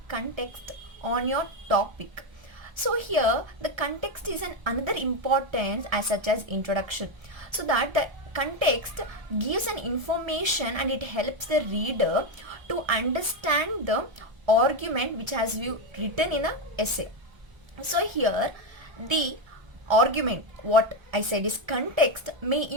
context on your topic. So here the context is an another importance as such as introduction, so that the context gives an information and it helps the reader to understand the argument which has you written in a essay. So here the argument, what I said is context, may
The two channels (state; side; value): late; left; 1.3 ms